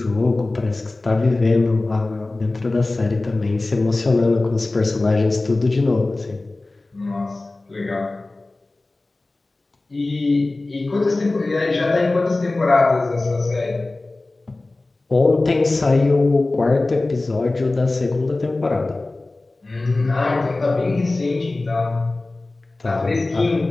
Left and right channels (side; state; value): right; quieter; 3.1 dB